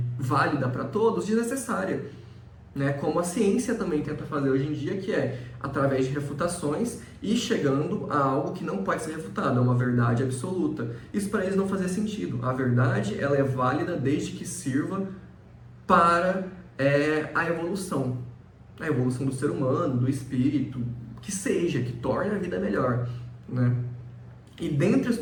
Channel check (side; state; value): both; identical; correlation 1.00